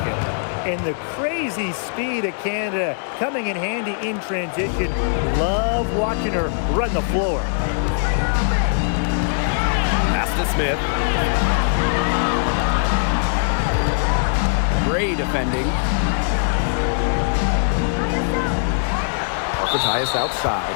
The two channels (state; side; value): silent; right; 65 dB below the other